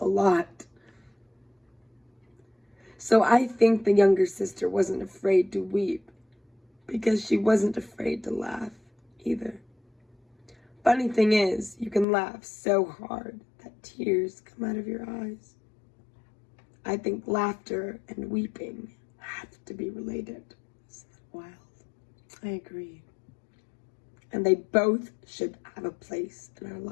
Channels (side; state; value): right; drops out; at 12.1 s